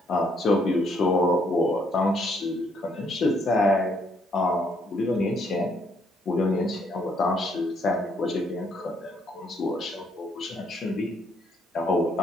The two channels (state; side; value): normal; both; correlation 0.70